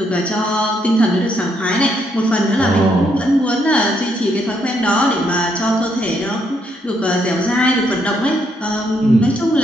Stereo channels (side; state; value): both; normal; correlation 0.74